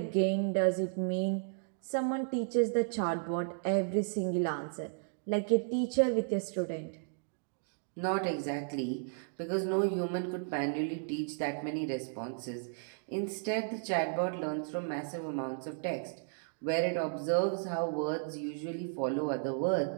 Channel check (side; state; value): left; silent; digital silence